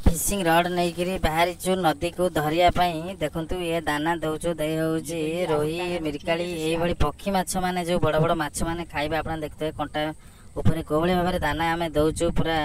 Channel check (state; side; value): identical; both; correlation 1.00